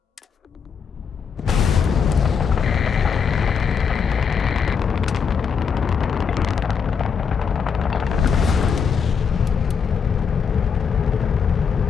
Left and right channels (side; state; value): right; quieter; 6.4 dB